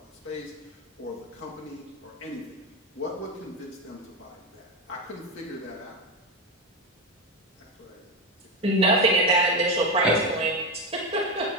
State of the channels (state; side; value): normal; both; correlation 0.14